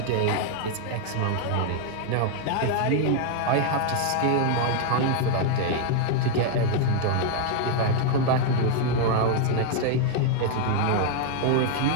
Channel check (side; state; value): both; different; correlation 0.00